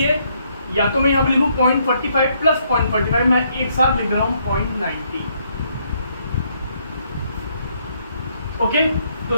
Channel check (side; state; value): both; inverted; correlation -0.71